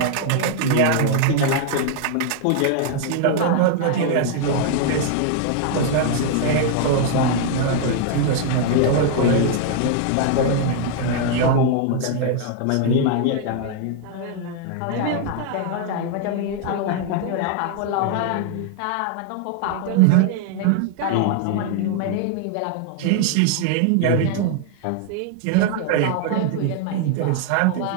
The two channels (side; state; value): both; different; correlation 0.00